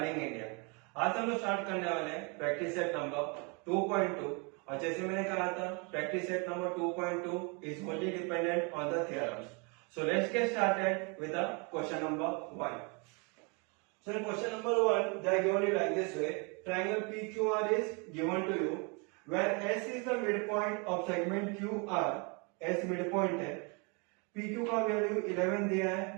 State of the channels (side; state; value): left; quieter; 32.6 dB